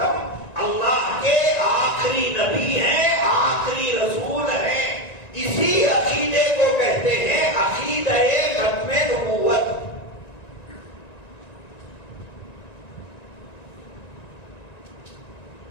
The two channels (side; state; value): right; late; 1.9 ms